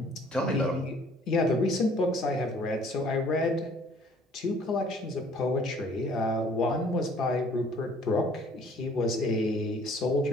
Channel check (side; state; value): both; normal; correlation 0.57